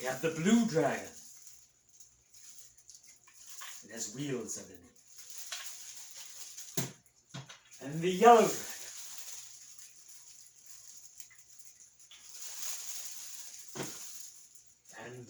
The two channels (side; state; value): both; identical; correlation 1.00